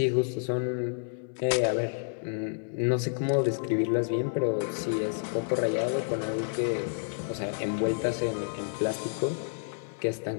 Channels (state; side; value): silent; right; 58 dB below the other